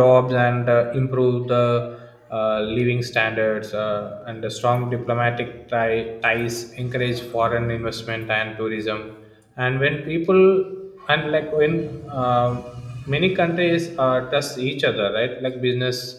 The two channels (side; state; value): both; identical; correlation 1.00